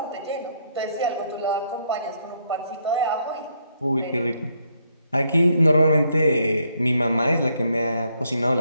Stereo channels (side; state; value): both; inverted; correlation -0.73